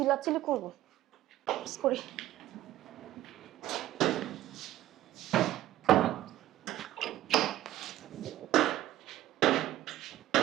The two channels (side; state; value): left; quieter; 14.3 dB